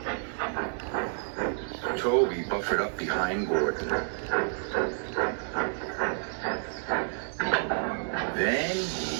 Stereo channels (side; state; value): left; silent; digital silence